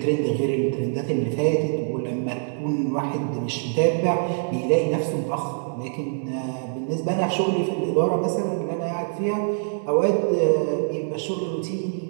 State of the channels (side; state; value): left; silent; 62 dB below the other